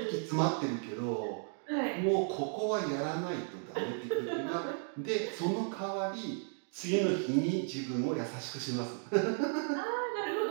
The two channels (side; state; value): left; silent; 55 dB below the other